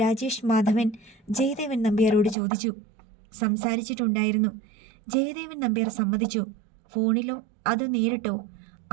രാജേഷ് മാധവൻ ജയദേവൻ നമ്പ്യാരോട് ചോദിച്ചു. സംസാരിച്ചിട്ടുണ്ടായിരുന്നു. ജയദേവൻ നമ്പ്യാർ സമ്മതിച്ചു. ഫോണിലോ അതോ നേരിട്ടോ?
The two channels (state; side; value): drops out; left; at 2.4 s